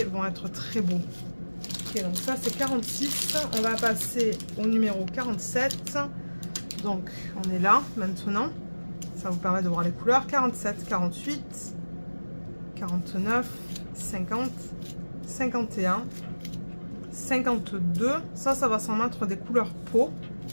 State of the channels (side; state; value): both; inverted; correlation -1.00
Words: vont être très beaux. Ok, donc ça, c'est 46. On va passer au numéro 47. Donc, on est là, maintenant. Ça vous permet de voir les couleurs. 47, 48, 49, 50, 51, 52. Ça va s'en mettre des couleurs peau.